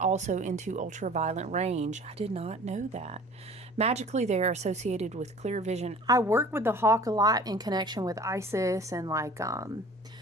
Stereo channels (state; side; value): normal; both; correlation 0.47